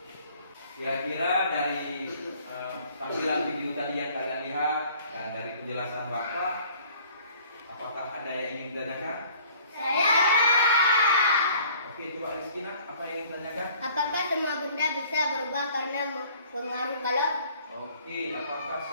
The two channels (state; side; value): inverted; both; correlation -0.54